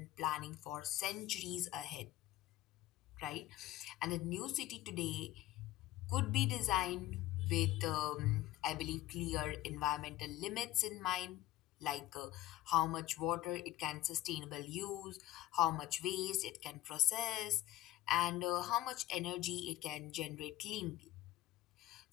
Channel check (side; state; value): right; quieter; 15.6 dB